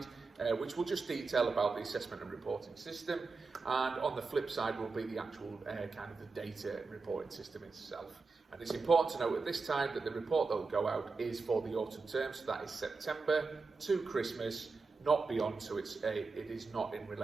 which will just detail about the assessment and reporting system, and on the flip side will be the actual kind of the data reporting system itself. And it's important to note at this time that the report that will go out is for the autumn term, so that is September to Christmas, not beyond, so it is not in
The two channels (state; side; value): quieter; left; 4.2 dB